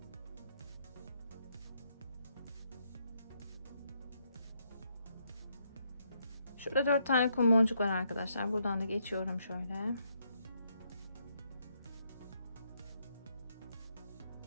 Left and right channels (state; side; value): inverted; both; correlation -0.75